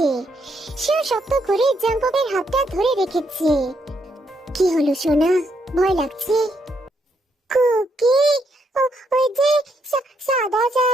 সেও শক্ত করে জঙ্কুকের হাতটা ধরে রেখেছে। কি হলো সোনা, ভয় লাগছে? কুকি, ওই যে সাদা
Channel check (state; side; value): normal; both; correlation 0.76